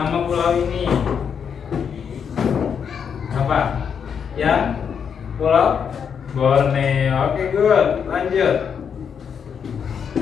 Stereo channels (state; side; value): quieter; right; 7.2 dB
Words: pulau ini apa? Yang Pulau Borneo. Oke, good. Lanjut.